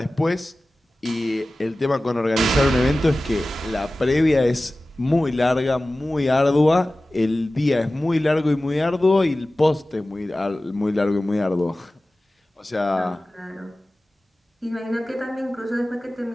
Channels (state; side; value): normal; both; correlation 0.96